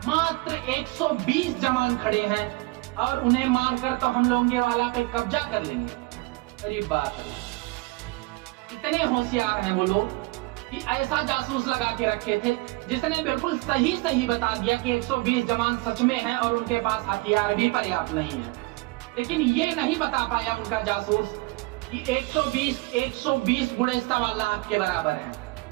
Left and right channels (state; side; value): quieter; left; 23.4 dB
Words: मात्र 120 जवान खड़े हैं और उन्हें मारकर तो हम लोंगे वाला पे कब्जा कर लेंगे। अरे बात है, इतने होशियार हैं वो लोग कि ऐसा जासूस लगा के रखे थे जिसने बिल्कुल सही सही बता दिया कि 120 जवान सच में हैं और उनके पास हथियार भी पर्याप्त नहीं है। लेकिन ये नहीं बता पाया उनका जासूस कि 120 बुढ़े 1.25 लाख के बराबर हैं।